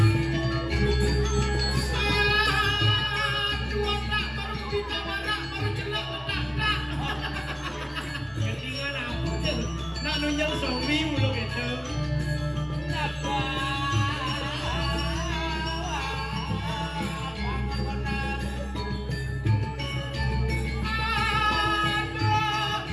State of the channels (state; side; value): identical; both; correlation 1.00